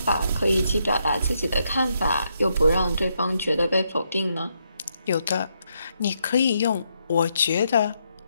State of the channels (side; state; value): both; inverted; correlation -0.78